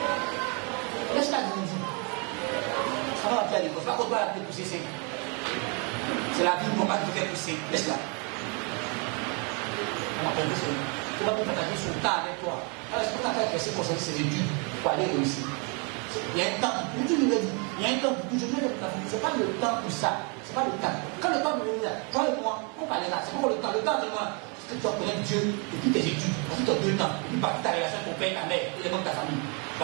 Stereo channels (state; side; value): quieter; left; 34.6 dB